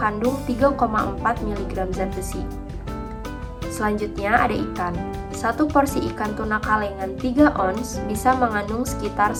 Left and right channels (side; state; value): both; identical; correlation 1.00